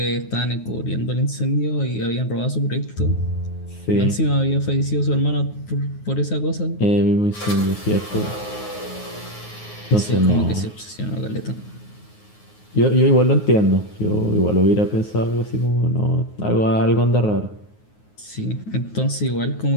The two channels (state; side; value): late; right; 9.5 ms